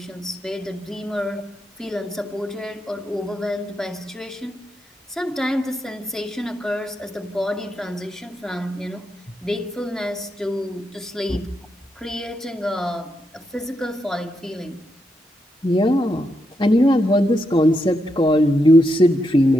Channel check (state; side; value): normal; both; correlation 0.82